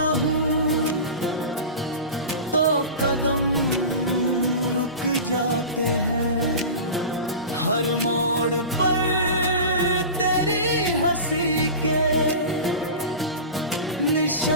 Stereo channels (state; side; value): inverted; both; correlation -0.31